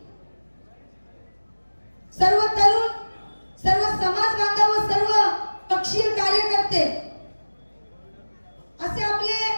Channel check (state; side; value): inverted; both; correlation -1.00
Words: सर्व तरुण, सर्व समाज बांधव व सर्व पक्षीय कार्यकर्ते असे आपले